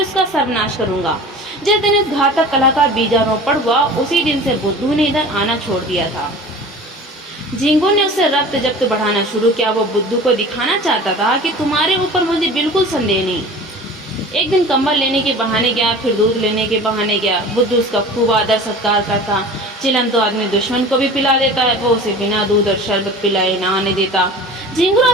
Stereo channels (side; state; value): both; normal; correlation 0.39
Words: उसका सर्वनाश करूंगा। जिस दिन इस घातक कला का बीजारोपण हुआ, उसी दिन से बुद्धू ने इधर आना छोड़ दिया था। झिंगुर ने उससे रक्त जब्त बढ़ाना शुरू किया। वो बुद्धू को दिखाना चाहता था कि तुम्हारे ऊपर मुझे बिल्कुल संदेह नहीं। एक दिन कंबल लेने के बहाने गया, फिर दूध लेने के बहाने गया। बुद्धू उसका खूब आदर सत्कार करता। चिलम तो आदमी दुश्मन को भी पिला देता है, वो उसे बिना दूध और शरबत पिलाए ना आने देता। झिंगुर